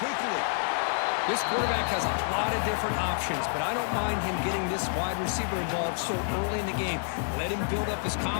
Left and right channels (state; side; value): silent; right; digital silence